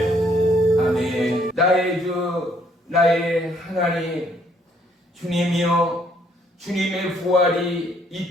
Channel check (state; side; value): normal; both; correlation 0.67